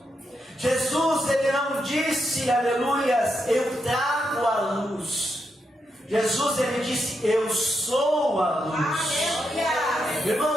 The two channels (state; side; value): normal; both; correlation 0.83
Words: Jesus, ele não disse, aleluias, eu trago a luz. Jesus, ele disse, eu sou a luz.